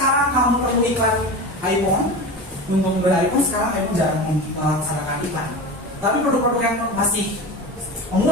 kamu perlu iklan iPhone? Untuk membeli iPhone sekarang iPhone jarang melaksanakan iklan. Tapi produk-produk yang masih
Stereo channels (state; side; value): normal; both; correlation 0.28